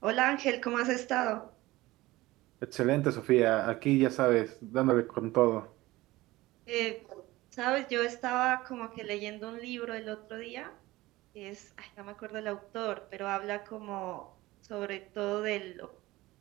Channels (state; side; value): quieter; left; 18.8 dB